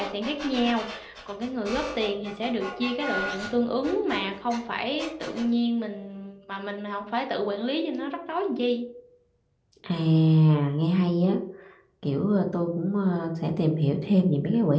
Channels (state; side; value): identical; both; correlation 1.00